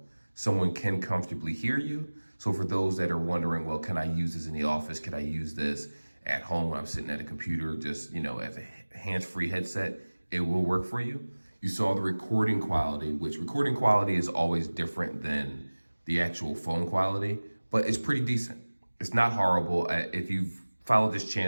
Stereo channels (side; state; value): both; inverted; correlation -1.00